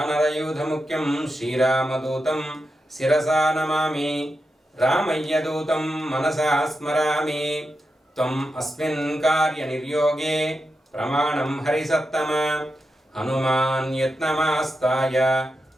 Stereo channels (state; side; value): normal; both; correlation 0.88